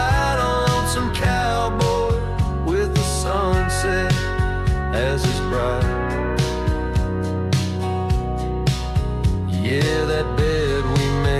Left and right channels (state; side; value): identical; both; correlation 1.00